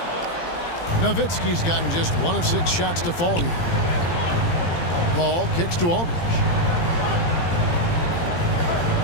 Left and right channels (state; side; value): late; right; 17 ms